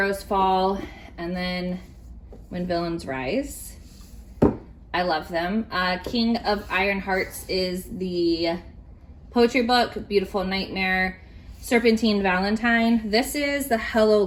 Fall and then When Villains Rise. I love them. King of Iron Hearts is the poetry book. Beautiful Nightmare. Serpentine Valentine. This is the Hello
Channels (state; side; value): identical; both; correlation 1.00